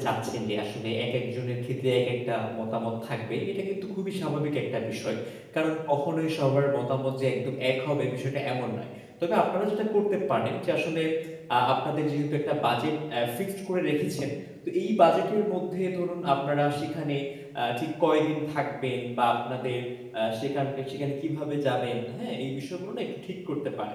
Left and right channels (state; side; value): identical; both; correlation 1.00